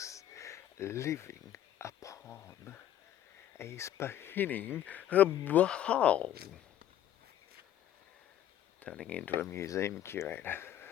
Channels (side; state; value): right; quieter; 11.5 dB